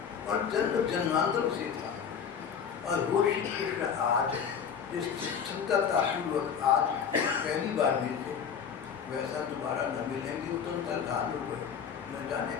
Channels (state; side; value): quieter; right; 7.2 dB